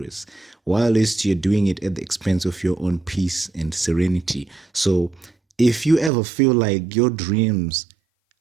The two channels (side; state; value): left; drops out; at 6.1 s